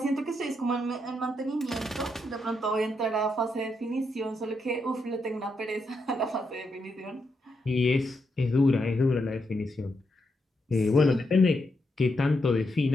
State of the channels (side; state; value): both; normal; correlation 0.82